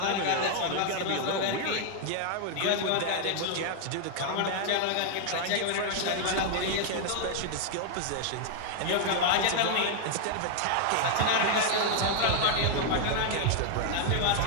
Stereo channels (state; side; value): different; both; correlation 0.00